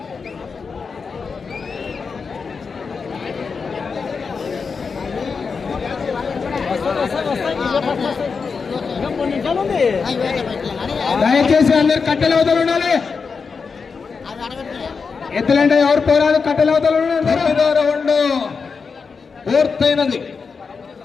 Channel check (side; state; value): right; quieter; 5.2 dB